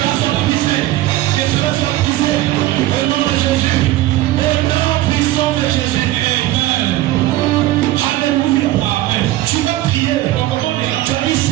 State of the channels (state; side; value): quieter; left; 16.0 dB